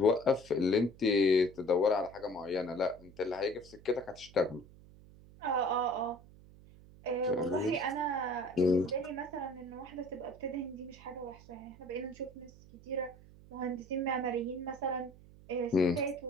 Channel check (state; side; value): noise; right; hum, 22 dB below the sound